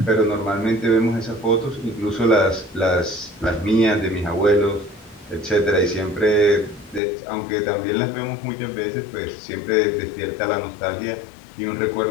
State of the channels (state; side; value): drops out; right; at 7.0 s